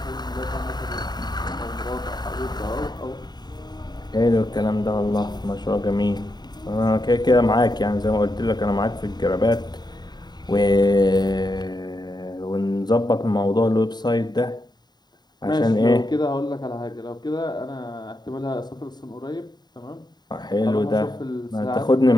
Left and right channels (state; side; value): late; right; 0.20 ms